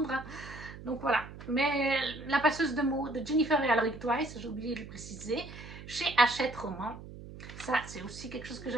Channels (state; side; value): noise; right; hum, 14 dB below the sound